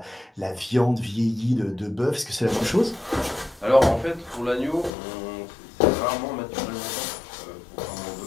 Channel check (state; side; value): drops out; right; at 4.9 s